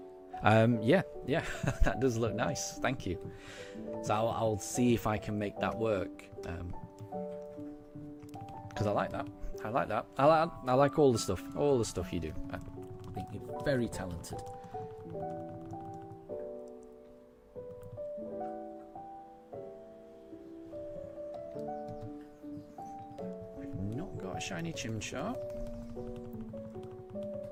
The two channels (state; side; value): identical; both; correlation 1.00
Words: Yeah, that does look nice. Thank you. So I'll see if I can make that work, because I like that. I like all the stuff you do. I think you're very talented. I've not got a shiny Chimchar.